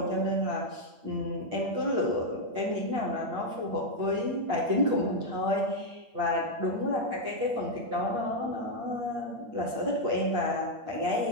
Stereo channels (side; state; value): left; late; 8.5 ms